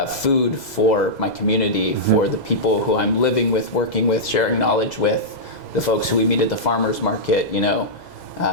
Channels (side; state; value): right; late; 2.0 ms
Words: food for my community, for the people who I'm living with, working with, sharing knowledge with, the folks who we meet at the farmers market.